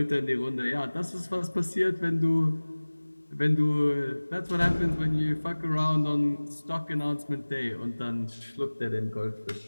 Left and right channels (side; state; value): both; inverted; correlation -1.00